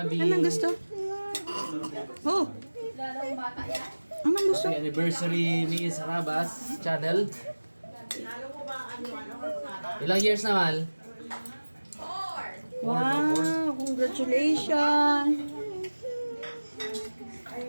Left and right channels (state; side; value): inverted; both; correlation -1.00